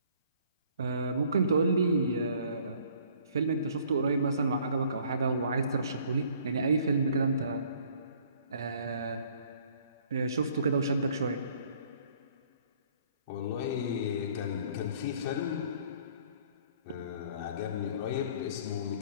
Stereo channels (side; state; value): both; inverted; correlation -0.58